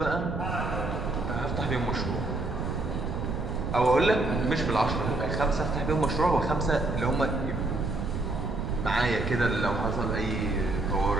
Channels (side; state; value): right; noise; rumble, 4 dB below the sound